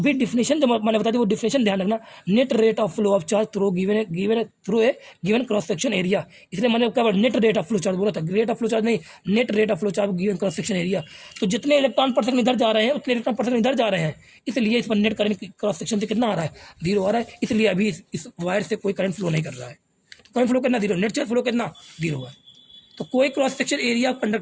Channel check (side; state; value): both; identical; correlation 1.00